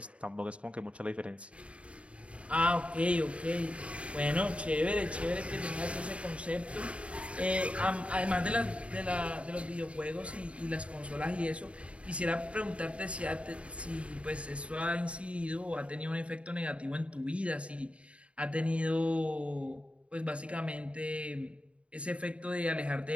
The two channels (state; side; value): late; left; 0.062 ms